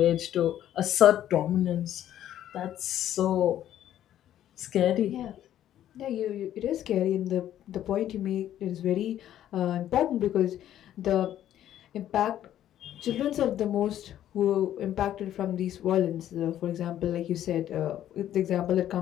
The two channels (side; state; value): right; quieter; 11.7 dB